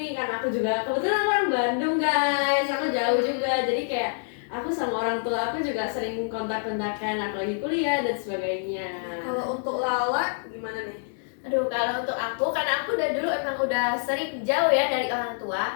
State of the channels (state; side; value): silent; right; digital silence